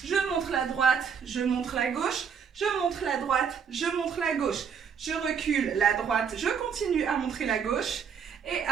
je montre la droite, je montre la gauche, je montre la droite, je montre la gauche. Je recule la droite, je continue à montrer la gauche. Et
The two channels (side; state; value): left; quieter; 6.9 dB